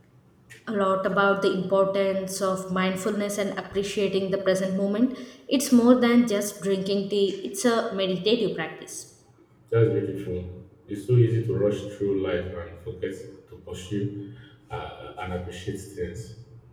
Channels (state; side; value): identical; both; correlation 1.00